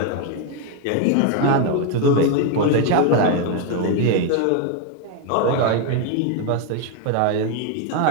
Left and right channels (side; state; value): both; different; correlation 0.01